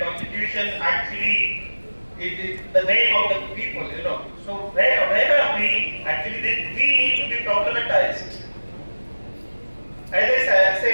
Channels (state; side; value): inverted; both; correlation -1.00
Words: Constitution actually it is the name of the people. So where are we? Actually, we need to be problematized. As I